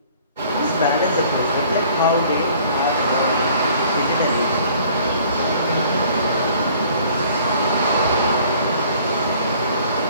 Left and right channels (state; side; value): inverted; both; correlation -0.55